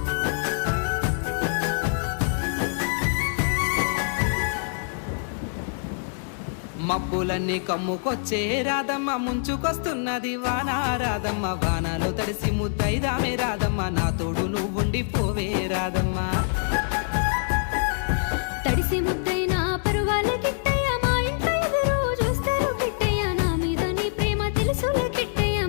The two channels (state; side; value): silent; right; 62 dB below the other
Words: మబ్బులన్నీ కమ్ముకొచ్చే రాదమ్మ ముంచుకొస్తున్నది వాన రాదమ్మ వానలో తడిసి ముద్దైదామే రాదమ్మ నా తోడు నువ్వుండి పోవే రాదమ్మ తడిసి ముద్దైన పరువాలకి